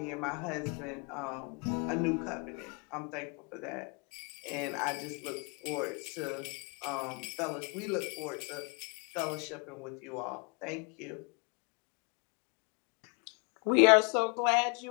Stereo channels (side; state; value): right; quieter; 33.5 dB